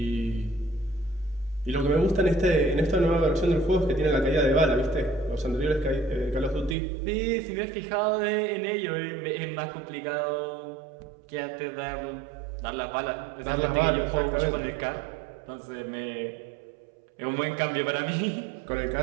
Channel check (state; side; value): drops out; left; at 6.8 s